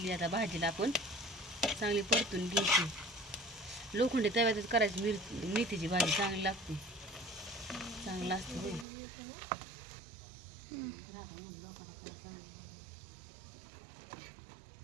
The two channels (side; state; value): left; drops out; at 8.8 s